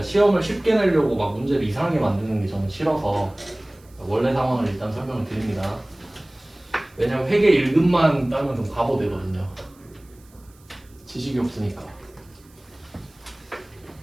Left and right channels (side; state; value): right; noise; hiss, 29 dB below the sound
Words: 시험을 쉽게 내려고 막 문제를 이상하게 만드는 게 저는 싫어서 원래 상황을 일단 설명을 드립니다. 왜냐면 회계 1급만 따면 좀 바보 되거든요. 지식이 없으니까.